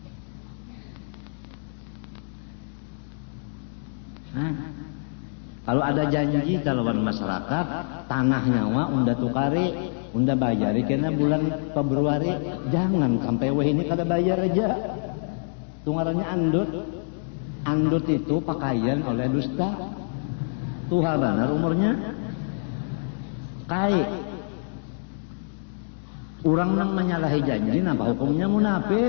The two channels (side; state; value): right; silent; digital silence